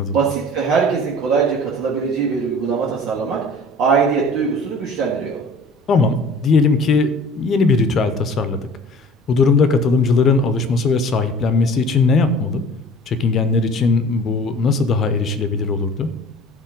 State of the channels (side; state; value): both; normal; correlation 0.46